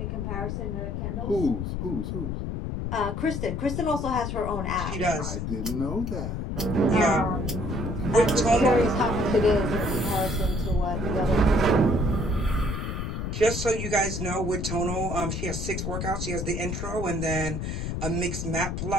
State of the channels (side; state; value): left; noise; rumble, 3 dB below the sound